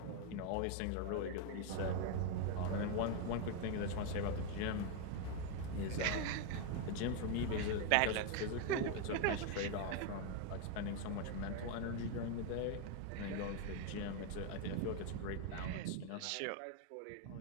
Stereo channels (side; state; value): both; different; correlation 0.01